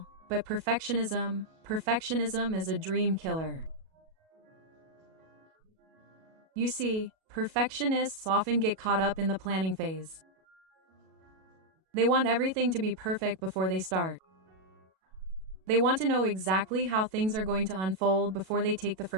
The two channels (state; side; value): late; left; 37 ms